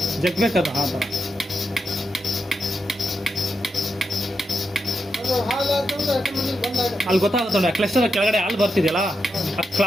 ಜಗ್ಬೇಕದು ಆ ಥರ. ಅಲ್ಲಿ ಗೊತ್ತಾಗುತ್ತೆ ನೋಡಿ, ಕ್ಲಸ್ಟರ್ ಕೆಳಗಡೆ ಹಾಲು ಬರ್ತಿದೆಯಲ್ಲ, ಆ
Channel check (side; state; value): both; normal; correlation 0.86